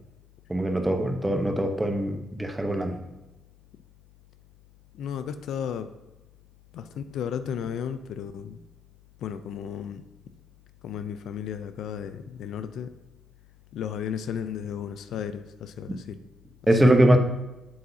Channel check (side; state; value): left; noise; hum, 27 dB below the sound